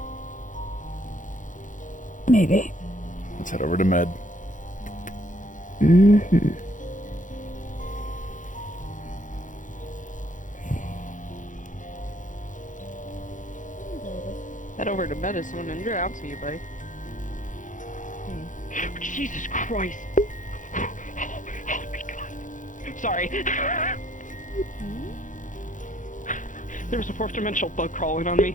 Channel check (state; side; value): late; right; 0.37 ms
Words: Maybe. Let's head over to Med. Head over to medicine and you're out to you, buddy. Jesus Christ. Oh my god. Sorry. There was a fourth dimensional bug crawling on